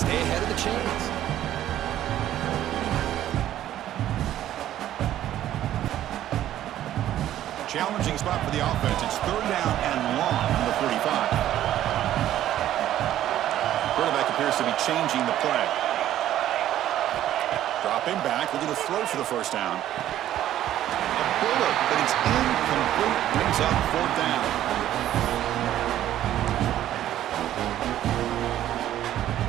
ahead of the chains. Challenging spot for the offense. It's 3rd down and long from the 45. Quarterback appears to be changing the play. Dropping back, looking to throw for the 1st down. A bullet, but it's incomplete. Brings up 4th down.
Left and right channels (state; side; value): quieter; left; 12.4 dB